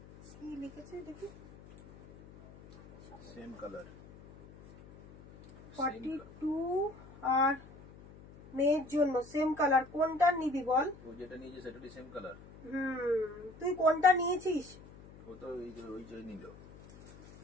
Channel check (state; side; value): noise; left; hum, 20 dB below the sound